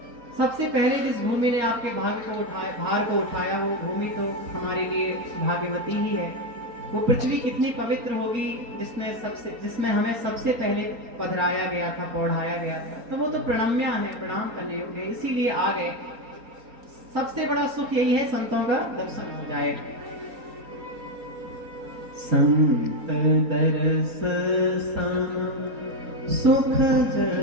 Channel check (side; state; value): left; late; 4.3 ms